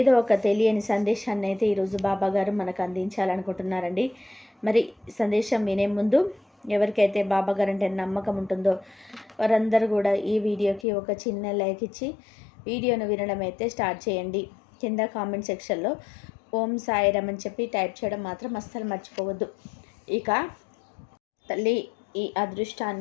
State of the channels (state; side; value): drops out; right; at 10.9 s